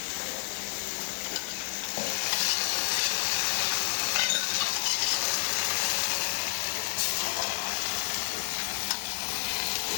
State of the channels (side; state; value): right; silent; digital silence